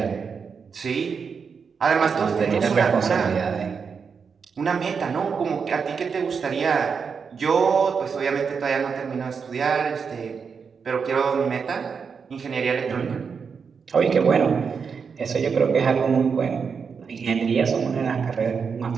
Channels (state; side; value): quieter; left; 5.9 dB